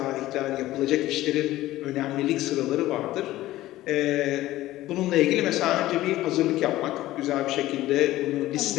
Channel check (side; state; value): right; quieter; 15.9 dB